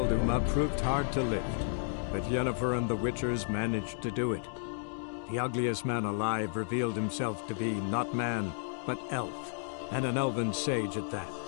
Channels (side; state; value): right; silent; digital silence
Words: Uma proved hard to lift, but Yennefer and the Witchers managed to do it. The ugliest man alive revealed himself to be not man, but elf, and an elven sage at that.